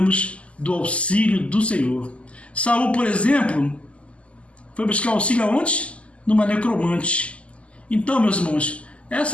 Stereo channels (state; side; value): late; right; 0.059 ms